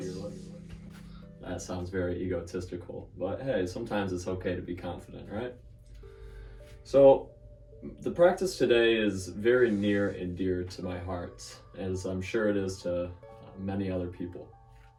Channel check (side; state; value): both; identical; correlation 1.00